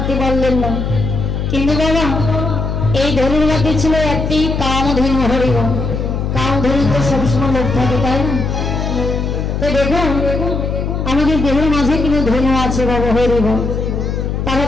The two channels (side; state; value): left; noise; hum, 2 dB below the sound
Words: পারলেন না। কিন্তু বাবা, এই ধনুর মধ্যে ছিল একটি কামধেনু হরিব। কামধেনু তো সবসময় লোক থাকে, তাই না? তো দেখুন, আমাদের দেহের মাঝে কিন্তু ধনু আছে বাবা হরিব। তারা